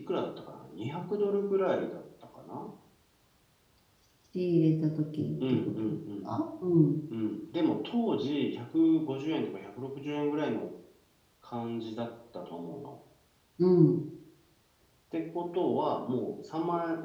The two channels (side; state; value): both; identical; correlation 1.00